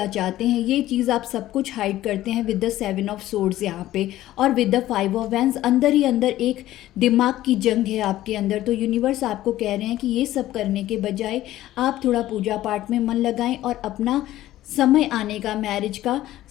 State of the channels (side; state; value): right; quieter; 14.6 dB